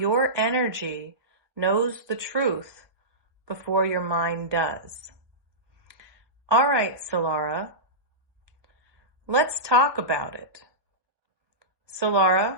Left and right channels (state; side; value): late; left; 1.1 ms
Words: energy knows the truth before your mind does. All right, Solara, let's talk about it.